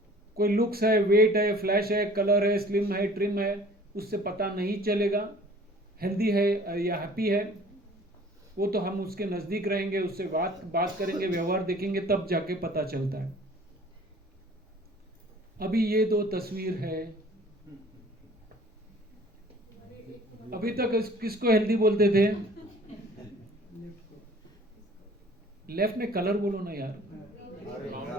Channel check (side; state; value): both; normal; correlation 0.50